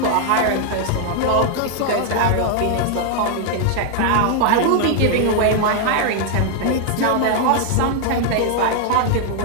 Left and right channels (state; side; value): different; both; correlation 0.00